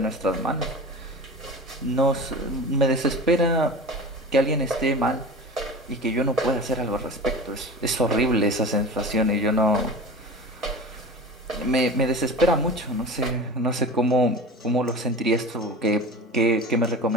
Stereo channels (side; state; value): both; normal; correlation 0.33